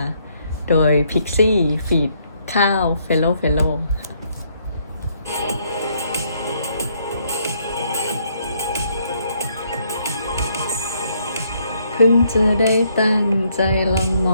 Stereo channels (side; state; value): both; inverted; correlation -0.71